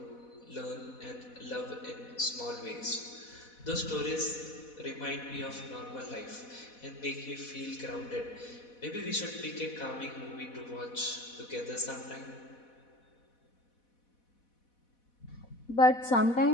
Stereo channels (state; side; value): late; right; 4.1 ms